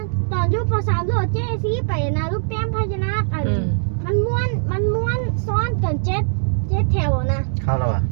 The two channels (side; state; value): left; silent; digital silence